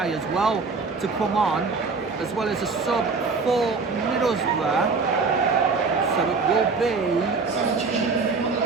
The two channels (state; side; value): quieter; left; 4.4 dB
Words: as well to come on, as well as a sub for Middlesbrough. So it